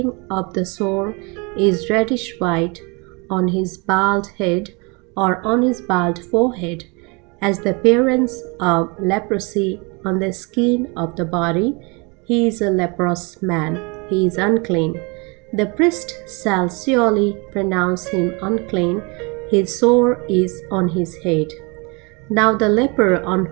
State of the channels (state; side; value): quieter; left; 29.7 dB